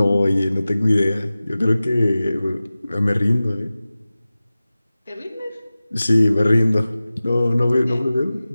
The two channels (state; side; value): inverted; both; correlation -0.97